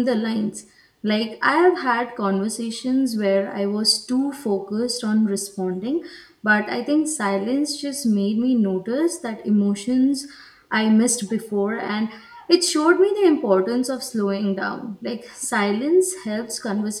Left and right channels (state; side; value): identical; both; correlation 1.00